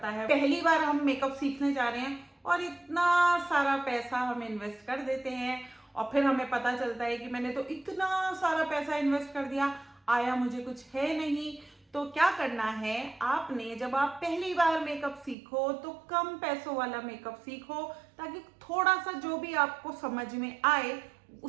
है, पहली बार हम मेकअप सीखने जा रहे हैं और इतना सारा पैसा हम इन्वेस्ट कर देते हैं और फिर हमें पता चलता है कि मैंने तो इतना सारा पैसा इन्वेस्ट कर दिया, आया मुझे कुछ है नहीं। तो क्या करना है आपने? जब आप पहली बार मेकअप सीखो तो कम पैसों वाला मेकअप सीखो, ताकि थोड़ा सा जो भी आपको समझ में आए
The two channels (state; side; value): drops out; left; at 15.4 s